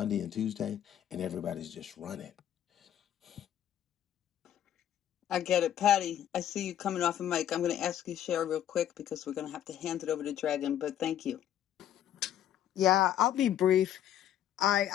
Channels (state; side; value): quieter; right; 10.9 dB